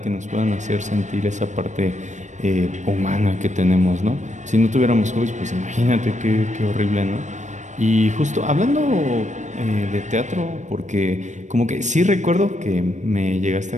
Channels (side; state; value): left; late; 0.35 ms